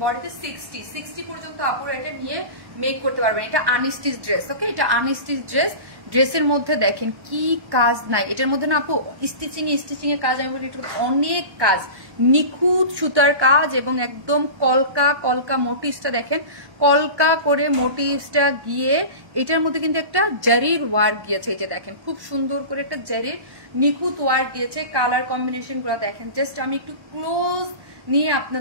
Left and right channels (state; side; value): late; left; 1.1 ms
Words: বডিতে 60 পর্যন্ত আপুরা এটা নিয়ে মেক করতে পারবেন। এটা আনস্টিচ ড্রেস। ওকে এটা আনস্টিচ ড্রেস। ড্রেসের মধ্যে দেখেন কি কাজ নাই এটার মধ্যে না আপু, স্টিচিং এর কাজ, আমি বলি অনেক কাজ, নিখুঁত সুতার কাজ এবং একদম কলকা মোটিভসটা দেখেন, কলকা করে মোটিভসটা গিয়ে এটার মধ্যে কিন্তু একটা জারির ওয়ার্ক গিয়েছে। এই যে দেখেন খুব সুন্দর করে একটা জারির নিখুঁত ওয়ার্ক দিয়েছে। কালার কম্বিনেশন গুলো দেখেন, জাস্ট আমি একটু ক্লোজ নিয়ে